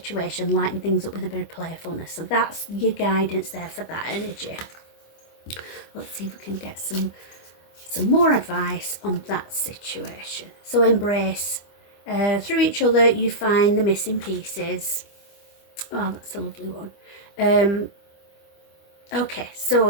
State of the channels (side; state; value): right; late; 25 ms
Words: lighten things up with a bit of playfulness. So that's your guidance there for that energy. Let's see if we can get some more advice on that situation. So embrace. Through each other you find the missing pieces. Oh, that's a lovely one. Okay,